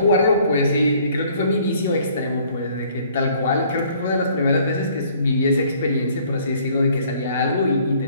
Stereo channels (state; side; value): inverted; both; correlation -0.59